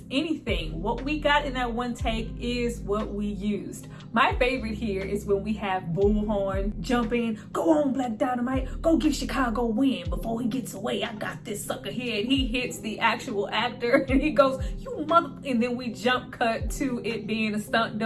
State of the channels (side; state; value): both; identical; correlation 1.00